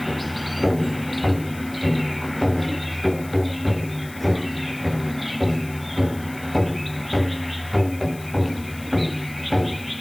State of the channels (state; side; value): noise; left; hiss, 19 dB below the sound